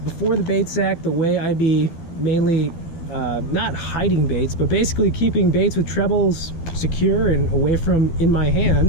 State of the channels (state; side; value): late; right; 12 ms